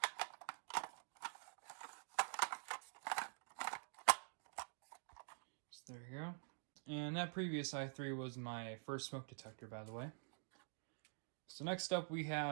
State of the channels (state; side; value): silent; left; digital silence